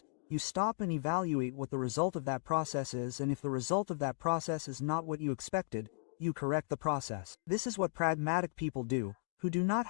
you stop and evaluate what the result of that process is, and if the result of that process is not what you expected, you correct the process. This is what pragmatic people do, who do not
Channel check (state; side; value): silent; right; digital silence